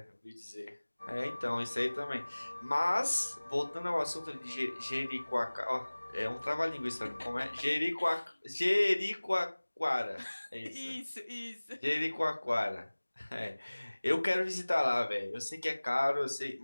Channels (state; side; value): inverted; both; correlation -1.00